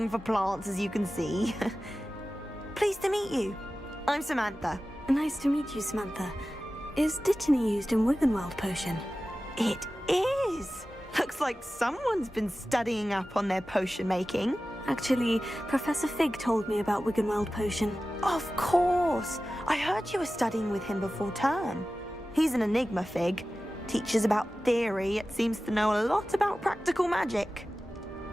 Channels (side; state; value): both; normal; correlation 0.95